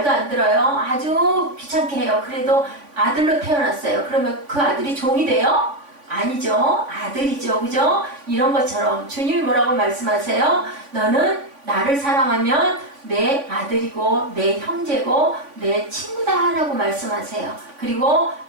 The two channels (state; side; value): late; left; 3.5 ms